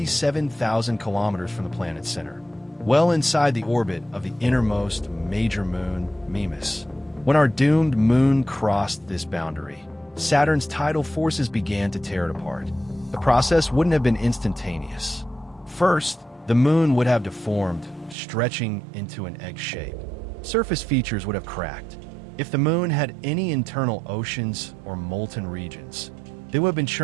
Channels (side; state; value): left; drops out; at 18.2 s